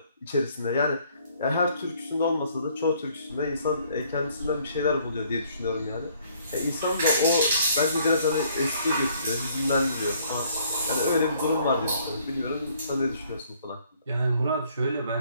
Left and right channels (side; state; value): both; inverted; correlation -0.63